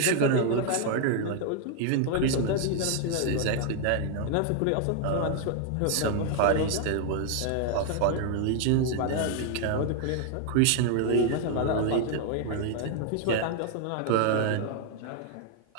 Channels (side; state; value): both; different; correlation 0.00